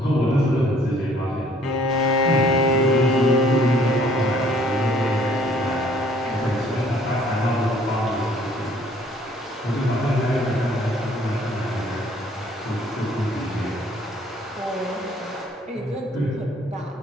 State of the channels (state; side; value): normal; both; correlation 0.59